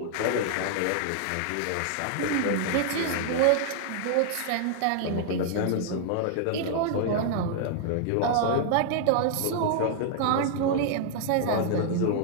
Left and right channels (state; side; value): different; both; correlation -0.01